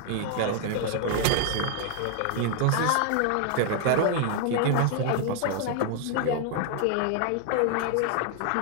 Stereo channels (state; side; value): different; both; correlation 0.00